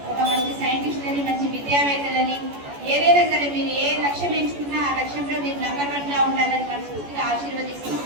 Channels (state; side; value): late; left; 14 ms